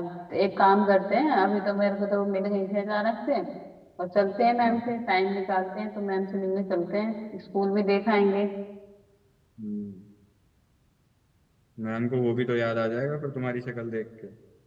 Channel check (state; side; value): identical; both; correlation 1.00